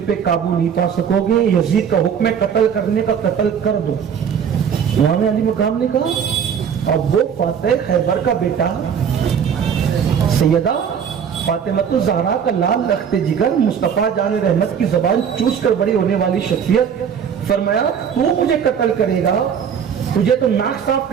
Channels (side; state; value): left; quieter; 7.6 dB